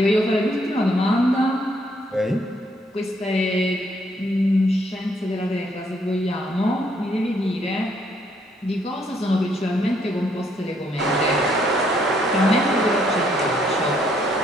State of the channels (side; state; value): both; normal; correlation 0.70